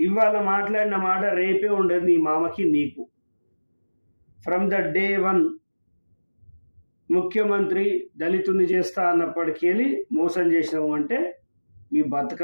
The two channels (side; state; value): both; inverted; correlation -1.00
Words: ఇవాళ మాట్లాడిన మాట రేపే ఉండదు నీ మామకి నీకు. ఫ్రమ్ ద డే 1 ముఖ్యమంత్రి దళితుని చేస్తా అన్నప్పటికీ మోసం చేసినావు అంటే మీ